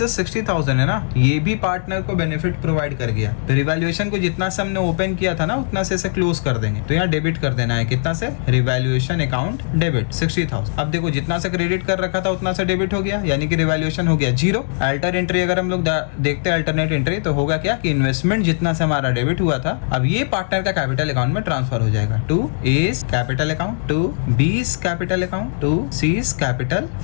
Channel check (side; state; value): right; silent; digital silence